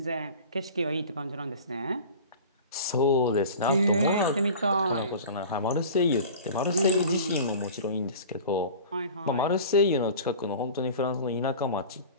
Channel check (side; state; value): both; inverted; correlation -0.39